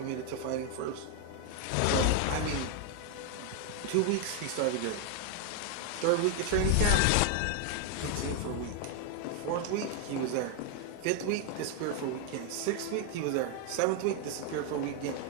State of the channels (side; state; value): both; different; correlation 0.01